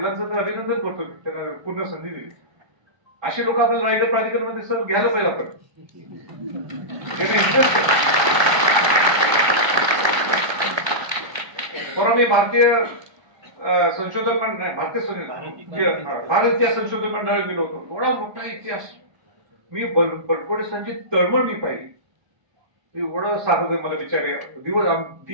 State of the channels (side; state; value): left; late; 1.2 ms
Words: तर अभिनंदन करतो मी, त्यांना पूर्ण संधी दिली. असे लोक आपल्याला रायगड प्राधिकरणामध्ये सर घ्यायला पाहिजे आपण. परवा मी भारतीय संशोधन मंडळ, भारत इतिहास संशोधन मंडळात गेलो होतो. एवढा मोठा इतिहास मी बलकोटे संचित तळमळ मी पाहिली. एवढं सांगत मला बिचारे दिवस